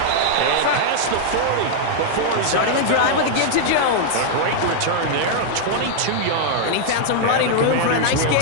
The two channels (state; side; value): different; both; correlation -0.01